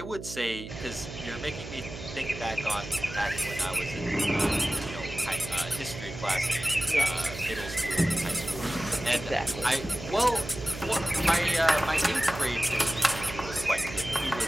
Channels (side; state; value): right; noise; hum, 11 dB below the sound